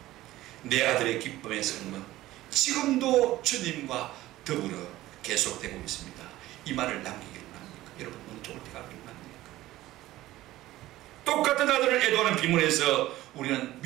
내 아들의 기쁨의 삶은 지금도 주님과 더불어 계속되고 있습니다, 이 말을 남기기를 합니까? 여러분, 어느 쪽을 택하기를 합니까? 똑같은 아들을 애도하는 비문에서 우리는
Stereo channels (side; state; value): left; quieter; 16.1 dB